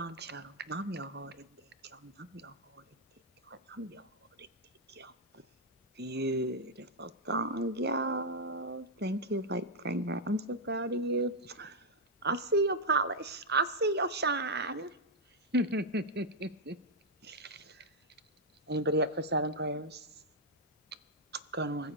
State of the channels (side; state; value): both; normal; correlation -0.03